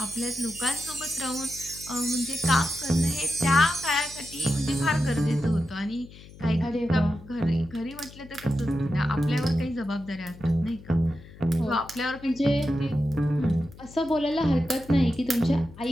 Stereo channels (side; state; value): left; noise; hum, 19 dB below the sound